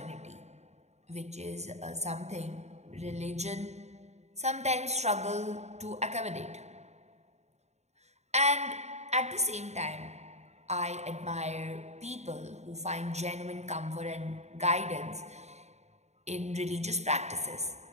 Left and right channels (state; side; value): late; left; 0.32 ms